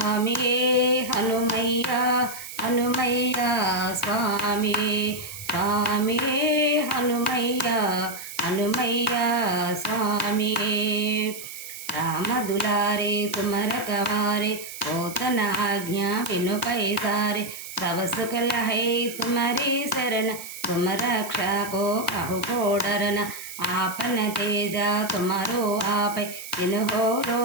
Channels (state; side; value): noise; right; hiss, 12 dB below the sound